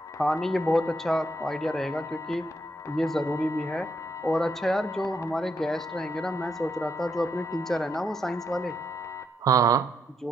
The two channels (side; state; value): both; normal; correlation 0.78